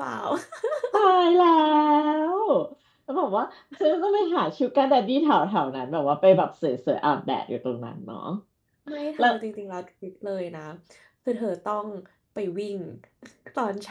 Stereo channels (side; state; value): both; identical; correlation 1.00